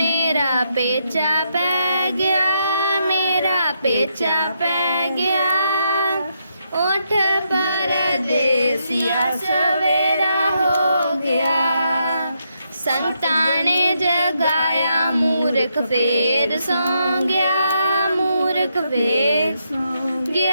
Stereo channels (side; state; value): both; inverted; correlation -0.79